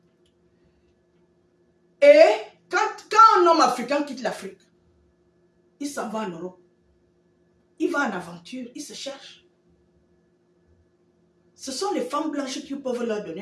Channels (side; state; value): both; identical; correlation 1.00